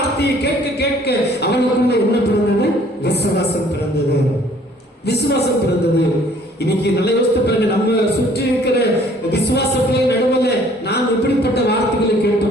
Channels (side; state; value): both; normal; correlation 0.57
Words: கேட்க கேட்க அவனுக்குள்ள என்ன பிறந்தது? விசுவாசம் பிறந்தது. விசுவாசம் பிறந்தது. இன்னைக்கு நல்ல யோசித்து பாருங்க, நம்ம சுற்றி இருக்கிற விசுவாச பிள்ளை நடுவில் நாங்க